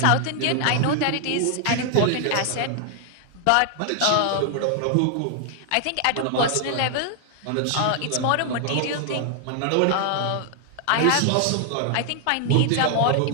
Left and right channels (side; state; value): both; different; correlation 0.00